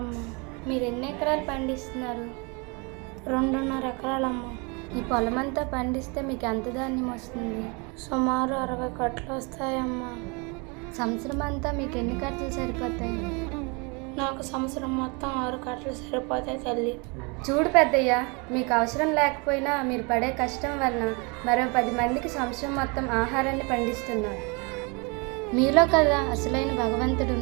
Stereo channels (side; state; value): left; quieter; 31.0 dB